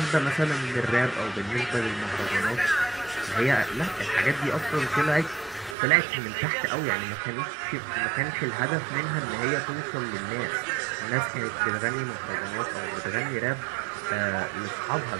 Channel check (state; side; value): drops out; left; at 5.8 s